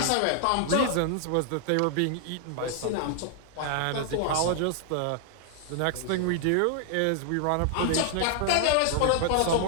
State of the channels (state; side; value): different; both; correlation 0.00